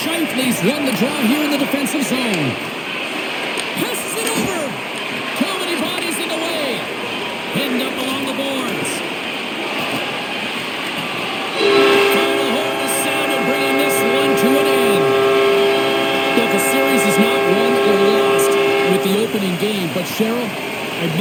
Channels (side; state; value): both; identical; correlation 1.00